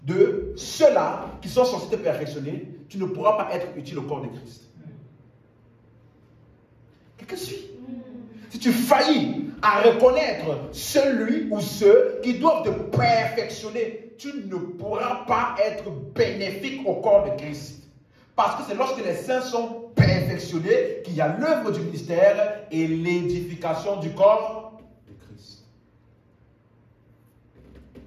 de ceux-là qui sont censés te perfectionner, tu ne pourras pas être utile au corps de Christ. Quelqu'un suit? Si tu faillis à reconnaître celui ou ceux qui doivent te perfectionner, tu ne pourras pas être bénéfique au corps de Christ. Parce que c'est lorsque les saints sont perfectionnés qu'il y a l'œuvre du ministère et l'édification du corps de Christ.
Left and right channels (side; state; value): both; identical; correlation 1.00